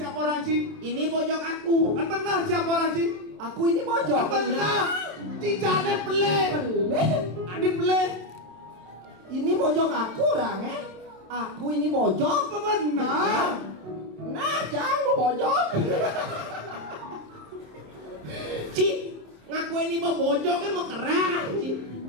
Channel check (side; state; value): left; late; 27 ms